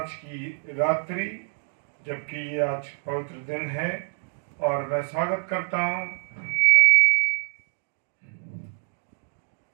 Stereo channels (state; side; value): silent; left; 61 dB below the other